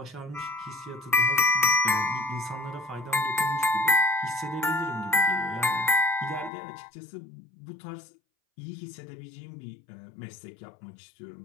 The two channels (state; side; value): drops out; right; at 6.5 s